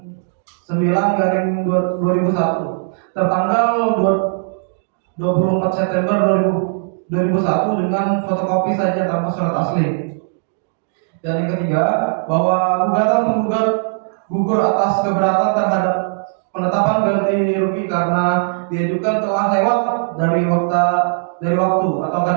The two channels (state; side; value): silent; left; digital silence